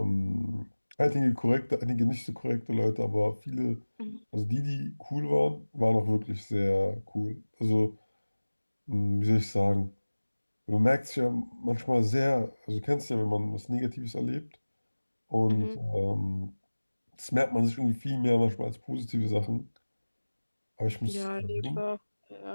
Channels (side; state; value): both; inverted; correlation -1.00